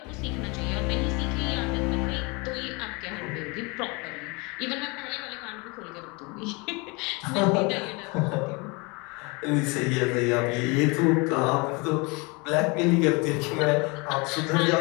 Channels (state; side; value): quieter; right; 28.2 dB